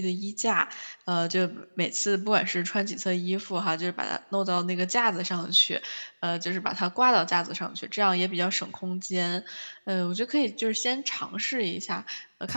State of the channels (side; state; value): both; inverted; correlation -1.00